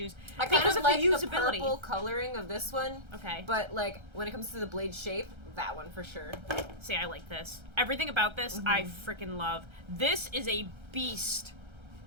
I kind Because of of like the the usability. purple coloring of this one. Okay. But, like, when it comes to the blade shape, that one for sure. See, I like this. Everything about this, I freaking love. This is a beast.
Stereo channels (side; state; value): left; late; 1.3 ms